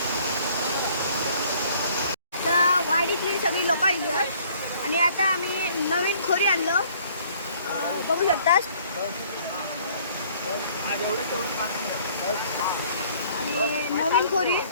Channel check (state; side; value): inverted; both; correlation -0.58